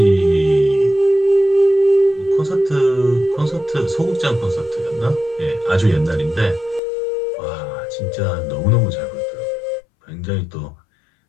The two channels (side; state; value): right; drops out; at 6.8 s